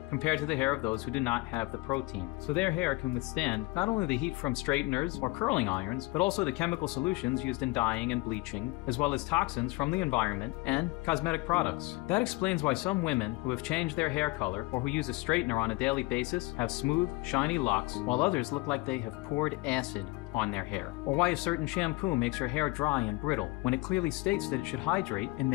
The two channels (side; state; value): right; quieter; 22.8 dB